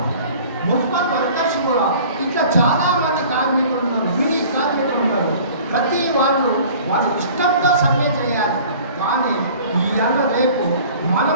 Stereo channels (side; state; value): both; inverted; correlation -0.47